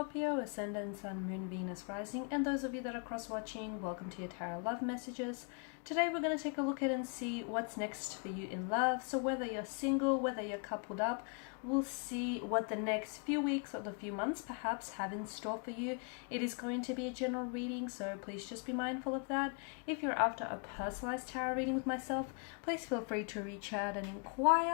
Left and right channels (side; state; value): right; quieter; 39.4 dB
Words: Ascendant, Sun, Moon, Venus, Rising, and those of you that are cross-watching, welcome to your Tarot Love Messages. Today we're going to take a look at and see what's next for you in love. So whether you're single, whether you're coupled up, we'll see what the next few weeks or the few months perhaps have in store for you. It is going to be a general reading, so please just be mindful of that. If you're after a personalized tarot reading with myself, please feel free to reach out and